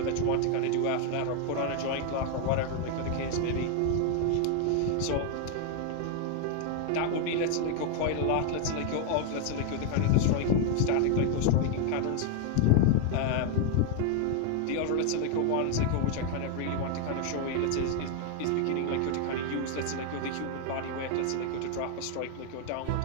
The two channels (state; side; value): different; both; correlation 0.01